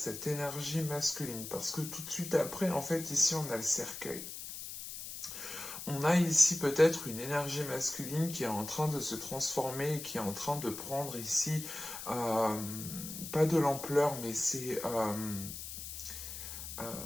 énergie masculine. Parce que tout de suite après, en fait, ici, on a le cercueil. On a ici peut-être une énergie masculine qui est en train de se transformer, qui est en train de prendre ici, pas de l'ampleur, mais c'est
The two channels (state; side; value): noise; left; hiss, 9 dB below the sound